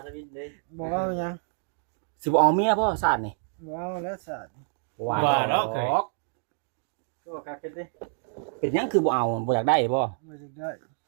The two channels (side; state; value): left; silent; digital silence